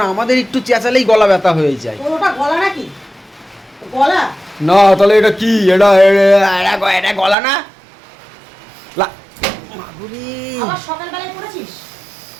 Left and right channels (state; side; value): drops out; left; at 7.4 s